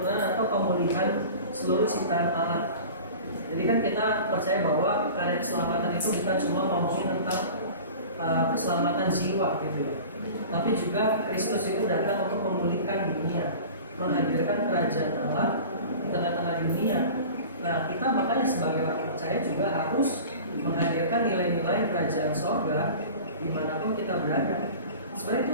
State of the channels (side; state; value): both; inverted; correlation -0.38